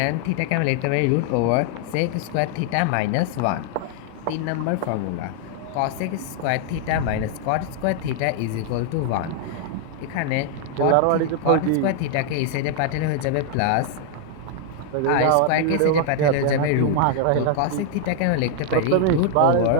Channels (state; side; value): different; both; correlation 0.00